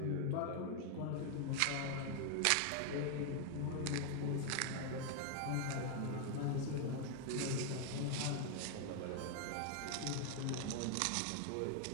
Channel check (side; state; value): both; different; correlation 0.00